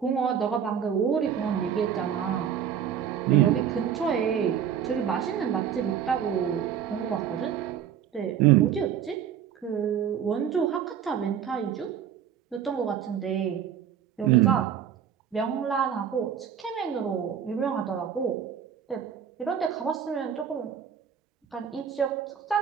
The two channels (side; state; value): left; quieter; 8.6 dB